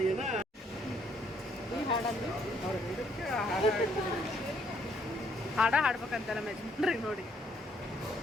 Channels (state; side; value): normal; both; correlation 0.68